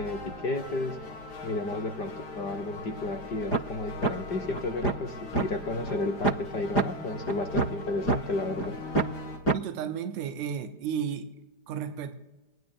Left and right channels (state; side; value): late; right; 4.9 ms